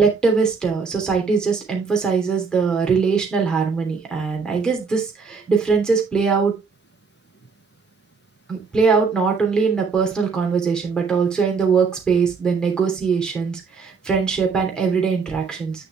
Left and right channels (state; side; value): quieter; left; 5.1 dB